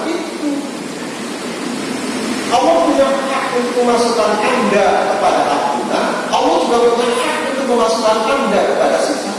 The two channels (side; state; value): both; identical; correlation 1.00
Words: itu. Allah punya hak untuk memasukkan Anda kepada ampunan, Allah juga punya hak untuk memasukkan Anda kepada